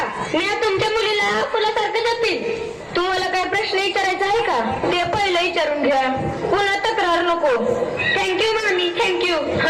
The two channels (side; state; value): both; identical; correlation 1.00